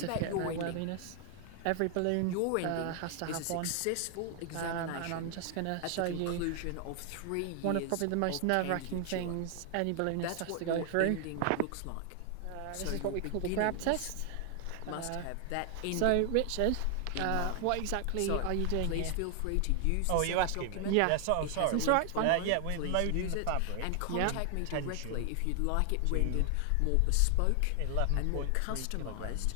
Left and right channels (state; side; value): different; both; correlation 0.00